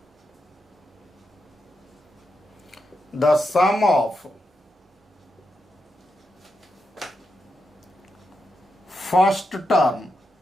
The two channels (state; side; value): normal; both; correlation 0.85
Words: the sum of first term